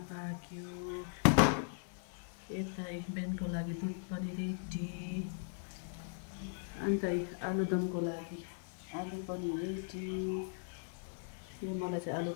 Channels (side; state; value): right; silent; digital silence